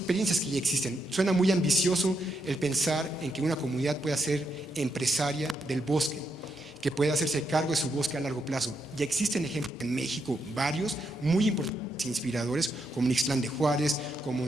que ya existen. Suena muy ambicioso el pensar en que una comunidad pueda ser empresaria del bosque, que pueda hacerse cargo de su bosque a largo plazo. Ya existen ejemplos en México, varios, muy importantes e inspiradores, como en Ixtlán de Juárez, como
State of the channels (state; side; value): normal; both; correlation 0.80